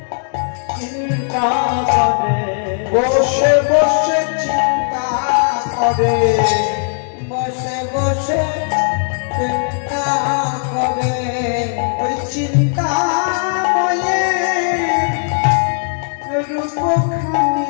চিন্তা করে, বসে বসে চিন্তা করে, বসে বসে চিন্তা করে। ওই চিন্তা ময়ে রূপখানি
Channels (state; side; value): silent; right; digital silence